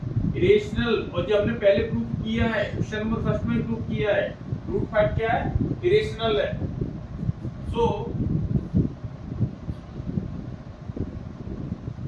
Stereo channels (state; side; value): identical; both; correlation 1.00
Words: इरेशनल। और जो हमने पहले प्रूव किया है, क्वेश्चन नंबर फर्स्ट में प्रूव किया है, √5 क्या है, इरेशनल है। So